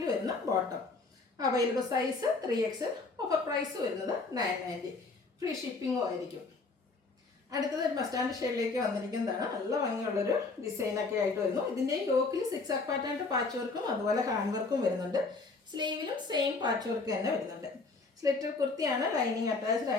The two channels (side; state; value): right; quieter; 3.9 dB